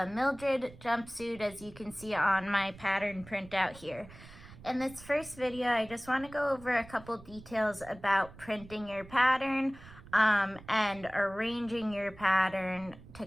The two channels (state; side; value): noise; right; rumble, 19 dB below the sound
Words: Mildred jumpsuit, as you can see on my pattern printout here. In this first video, I just want to go over a couple details about printing your pattern and arranging your pattern to